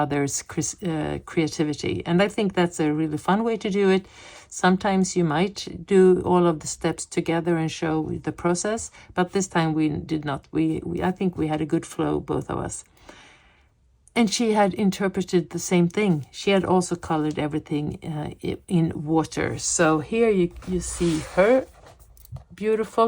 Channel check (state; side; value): identical; both; correlation 1.00